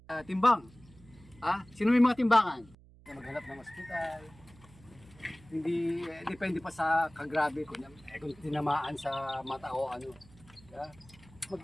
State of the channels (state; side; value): noise; right; hum, 24 dB below the sound